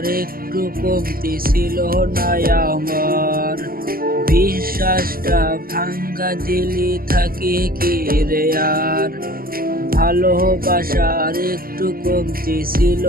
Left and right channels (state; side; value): late; left; 0.42 ms